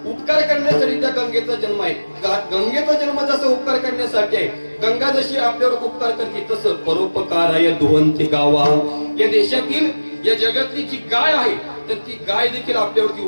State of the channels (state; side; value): inverted; both; correlation -1.00